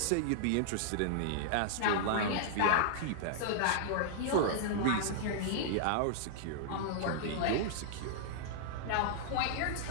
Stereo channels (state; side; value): different; both; correlation -0.01